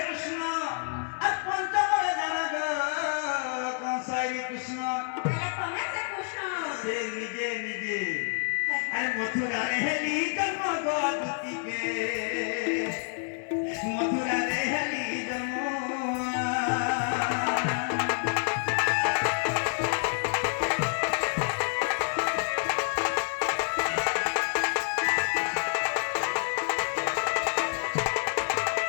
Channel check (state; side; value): silent; right; 59 dB below the other